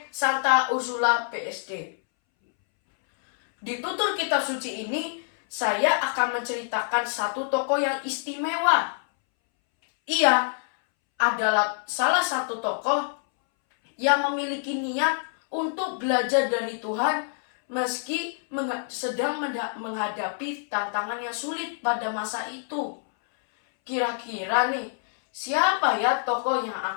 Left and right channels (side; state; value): right; silent; 61 dB below the other